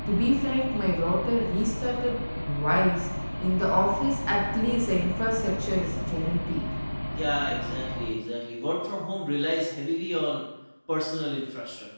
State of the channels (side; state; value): both; inverted; correlation -1.00